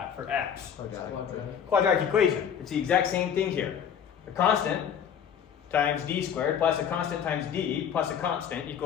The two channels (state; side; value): quieter; right; 8.2 dB